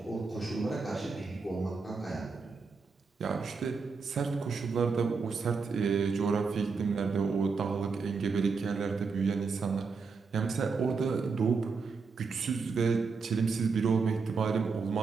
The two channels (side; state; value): left; quieter; 4.8 dB